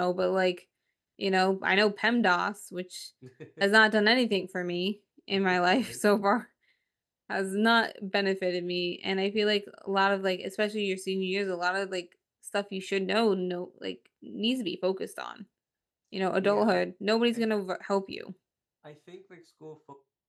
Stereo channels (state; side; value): identical; both; correlation 1.00